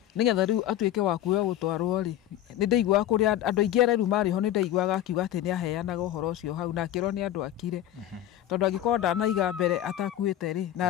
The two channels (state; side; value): quieter; right; 12.2 dB